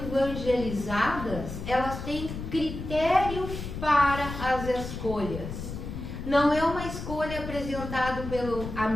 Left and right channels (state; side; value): noise; left; rumble, 8 dB below the sound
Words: elas têm critério para as escolhas. Não é uma escolha apresentada pelo